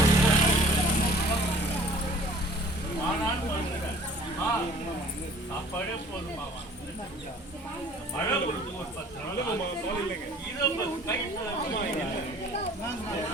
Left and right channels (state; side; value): normal; both; correlation 0.50